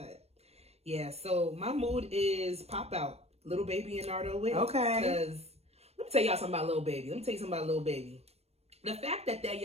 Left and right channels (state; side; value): late; left; 0.30 ms